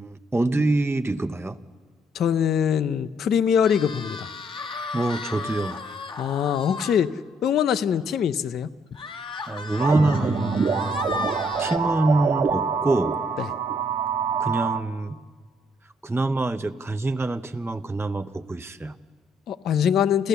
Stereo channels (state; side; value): normal; both; correlation 0.69